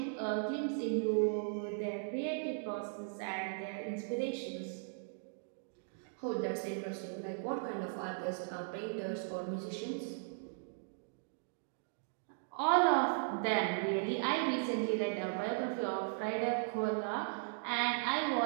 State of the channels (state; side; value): silent; left; digital silence